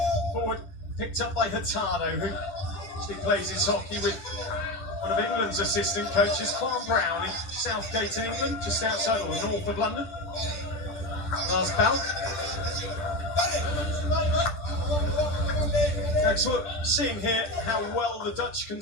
Forward picked up by Hurtado, who actually plays his hockey with one of England's assistant coaches, Farm Brown, in Southgate in England, just outside or north of London. Lars Balk. So we're seeing here how well the Dutch can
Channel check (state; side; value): late; right; 10 ms